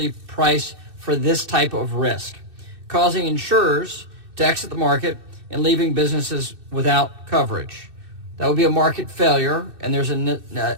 price for this type of risk, causing insurers to exit the market and leaving businesses without coverage. That would be a market failure, and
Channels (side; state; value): left; late; 2.6 ms